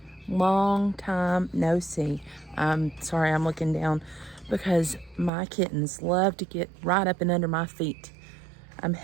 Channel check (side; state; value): left; drops out; at 5.3 s